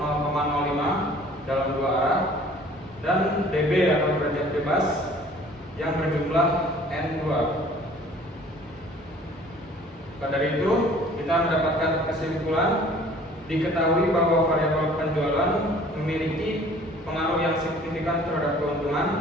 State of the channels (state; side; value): normal; both; correlation 0.52